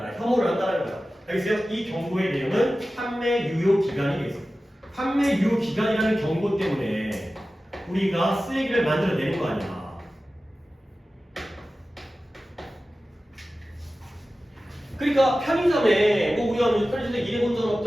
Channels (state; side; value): normal; both; correlation 0.95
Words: 혐오를 한다는 거야. 알겠어요? 이 경고의 내용은 판매 유효 기간이 되겠어요. 판매 유효 기간이라는 경고 때문에 우리가 쓰레기를 만들어내는 거 아니야. 그러니까 편의점에 뭐 우리가 편의점에 일해본 적은